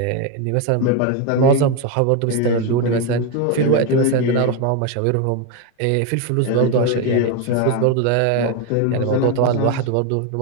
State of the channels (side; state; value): both; different; correlation 0.02